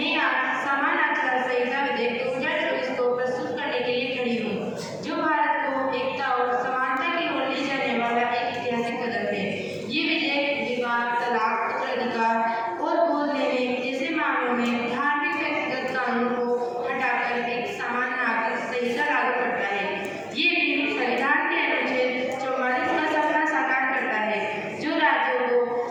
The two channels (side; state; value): both; identical; correlation 1.00